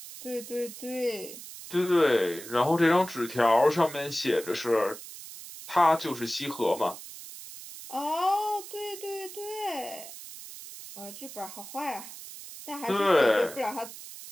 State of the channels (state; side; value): noise; right; hiss, 13 dB below the sound